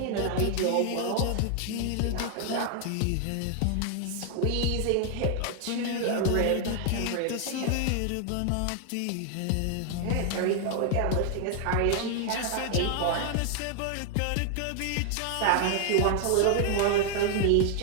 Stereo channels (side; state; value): both; different; correlation 0.00